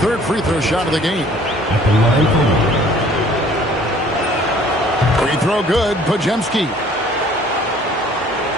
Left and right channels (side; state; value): both; normal; correlation 0.55